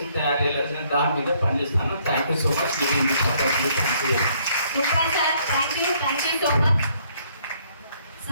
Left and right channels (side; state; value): both; inverted; correlation -0.66